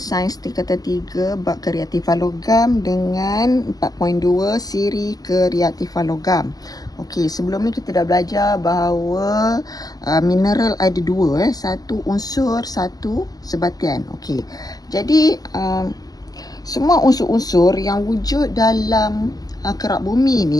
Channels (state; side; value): late; right; 0.18 ms